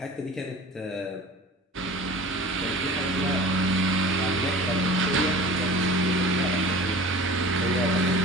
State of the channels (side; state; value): both; normal; correlation 0.40